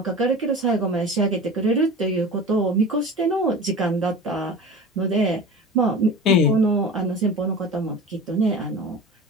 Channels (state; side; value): normal; both; correlation 0.35